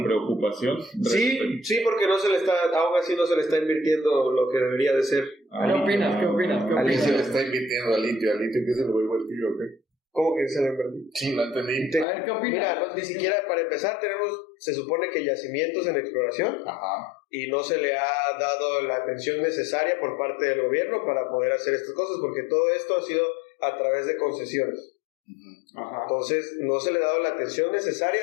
preocupación? Sí, porque aún así no se le está invirtiendo lo que debería de ser. ¿Qué opinas? ¿Alguien se le está invirtiendo al litio? ¿Al litio qué se le va a invertir o qué? ¿Cómo que se le invirtió? Sí, no entendí. A ver, ¿qué opinas? Mira, ni siquiera para empezar se supone que yacimientos en exploración. Ajá. Y no se le ha dado la atención necesaria por parte del gobierno para poder hacer estas cosas, porque todo esto ha sido a través de concesiones. Ajá. Entonces no se le ha dado la atención necesaria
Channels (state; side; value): drops out; right; at 12.1 s